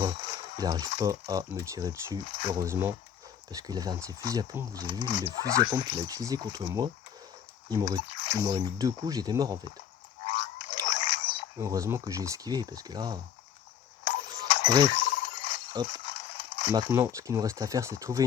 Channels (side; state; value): right; quieter; 8.9 dB